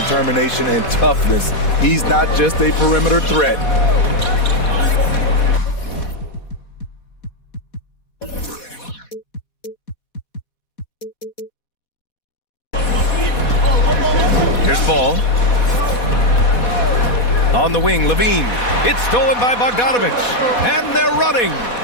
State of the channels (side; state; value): right; late; 4.1 ms